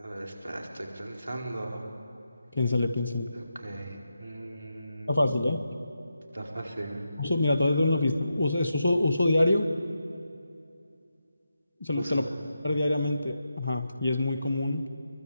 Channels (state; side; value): inverted; both; correlation -0.87